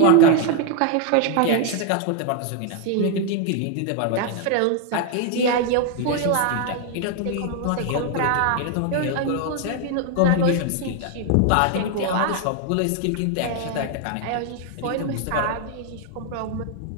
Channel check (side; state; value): both; different; correlation 0.01